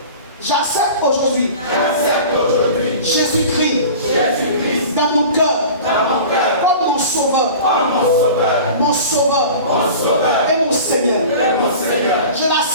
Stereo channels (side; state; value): both; inverted; correlation -0.38